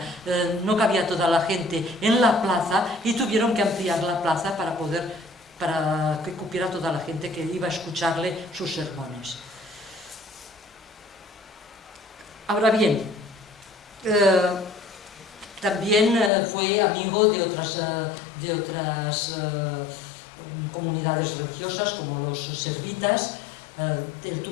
no cabía toda la gente en la plaza y tuvieron que ampliar la plaza para que cupiera toda la gente que iba a escucharle sus sermones. Ahora bien, también fue amigo de otras comunidades religiosas, como los servitas. Él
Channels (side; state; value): right; drops out; at 16.3 s